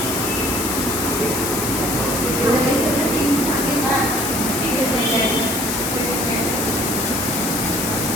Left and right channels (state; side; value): noise; left; hiss, 2 dB below the sound